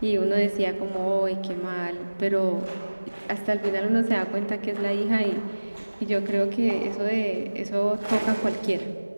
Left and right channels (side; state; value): both; inverted; correlation -1.00